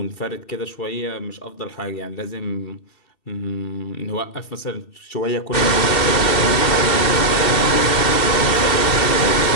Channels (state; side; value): late; right; 2.7 ms